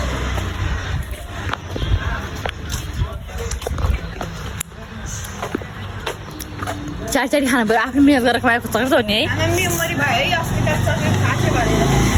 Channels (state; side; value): identical; both; correlation 1.00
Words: चार चारी खानु पऱ्यो आफ्नो मिहिनेत गरेर खुवाएको चक्लेट हो नि है